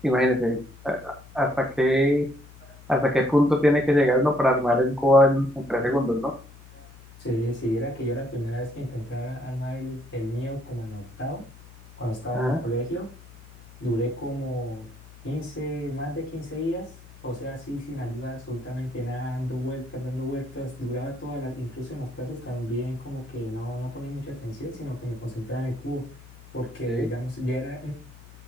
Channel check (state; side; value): noise; left; hum, 20 dB below the sound